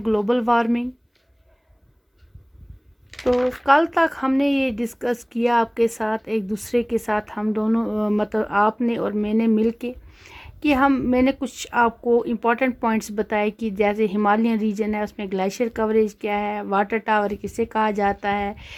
ग्लोबल वार्मिंग. तो कल तक हमने ये डिस्कस किया आपके साथ, एक दूसरे के साथ हम दोनों मतलब आपने और मैंने मिल के कि मैंने कुछ आपको इम्पॉर्टेंट पॉइंट्स बताए कि जैसे हिमालयन रीजन है उसमें ग्लेशियर कवरेज क्या है, वाटर टावर किसे कहा जाता है,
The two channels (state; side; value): identical; both; correlation 1.00